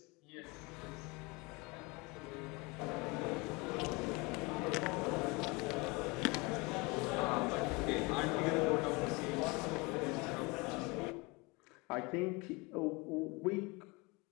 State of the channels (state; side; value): quieter; right; 26.5 dB